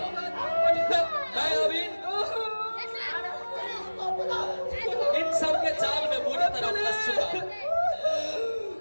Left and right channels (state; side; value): inverted; both; correlation -1.00